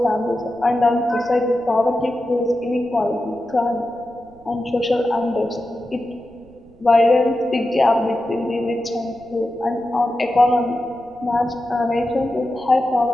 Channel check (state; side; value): noise; right; rumble, 26 dB below the sound